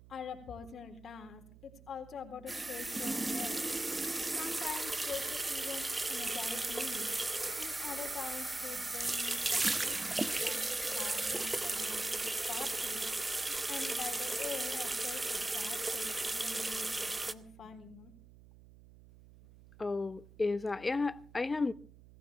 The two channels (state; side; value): noise; right; hum, 21 dB below the sound